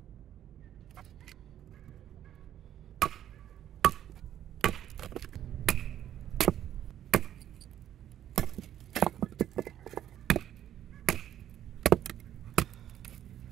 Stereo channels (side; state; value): left; quieter; 11.0 dB